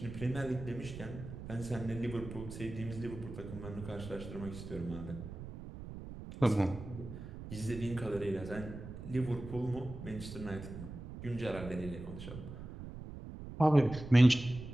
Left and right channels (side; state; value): right; noise; rumble, 11 dB below the sound